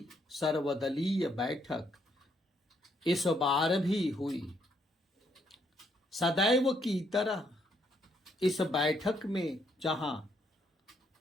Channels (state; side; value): normal; both; correlation 0.73